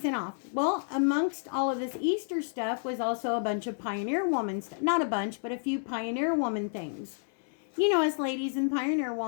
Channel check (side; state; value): right; silent; 58 dB below the other